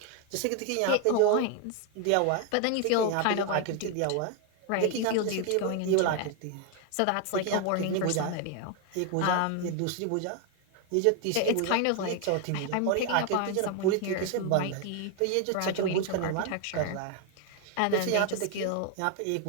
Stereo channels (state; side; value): different; both; correlation 0.01